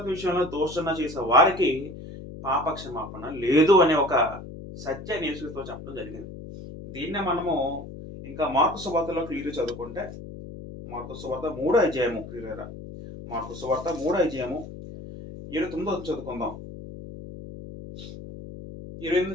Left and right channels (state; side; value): noise; left; hum, 12 dB below the sound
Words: విషయంలో దోషణ చేసే వారికి పాప క్షమాపణ లేదు అనే ఒక సత్యాన్ని యేసుక్రీస్తు చెప్పడం జరిగింది. దీన్నే మనము ఇంకా మార్కు సువార్తలో క్లియర్ చదువుకుంటే, మార్కు సువార్త 3వ అధ్యాయము క్లియర్ మార్కు సువార్త 3వ అధ్యాయము 29 చదువుకుందాం.